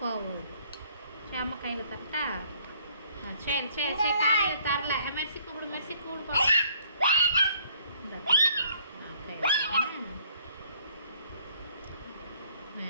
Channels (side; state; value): both; inverted; correlation -0.61